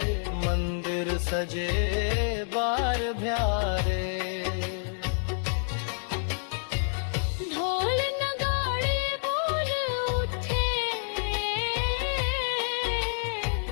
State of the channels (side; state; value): right; silent; 59 dB below the other